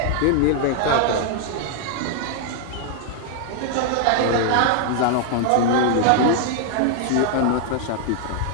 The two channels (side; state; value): both; different; correlation 0.00